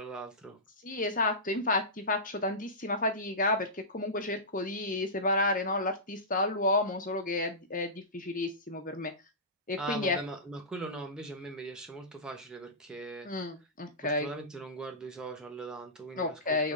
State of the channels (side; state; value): both; normal; correlation -0.18